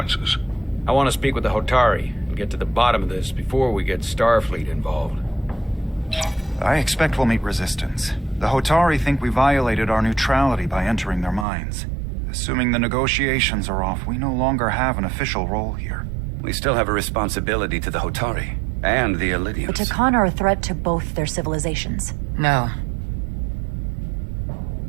I want to speak with the Hotari and get to the bottom of this before we get Starfleet involved. I expect we'll meet resistance. The Hotari think we violated our neutrality by entering their minds. Assuming the negotiations are off, we no longer have an official role here. We still have a responsibility to the Hotari and the Elydians. The Takan are a threat to both their civilizations. No.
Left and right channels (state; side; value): drops out; left; at 11.5 s